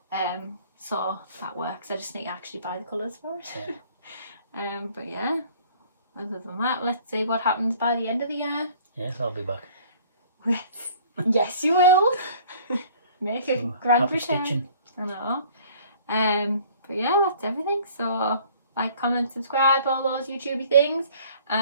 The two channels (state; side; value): inverted; both; correlation -0.53